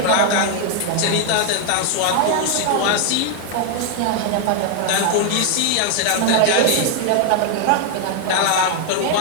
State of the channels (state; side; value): different; both; correlation 0.00